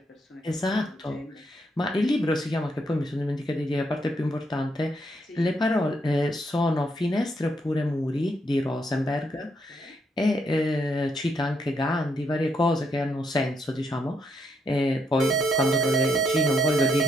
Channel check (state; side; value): normal; both; correlation 0.76